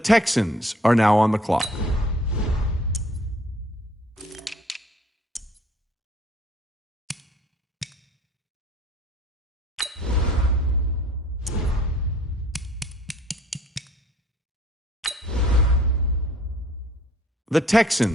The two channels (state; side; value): normal; both; correlation 0.56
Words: are now on the clock. The